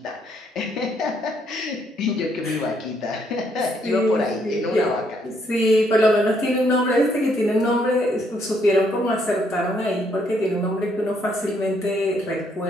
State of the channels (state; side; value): normal; both; correlation 0.71